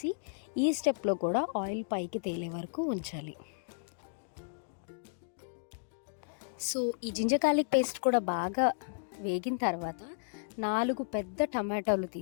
ఈ స్టెప్లో కూడా ఆయిల్ పైకి తేలే వరకు ఉంచాలి. సో ఈ జింజర్ గార్లిక్ పేస్ట్ కూడా బాగా వేగిన తర్వాత 4 పెద్ద టమాటాలు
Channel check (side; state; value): right; silent; digital silence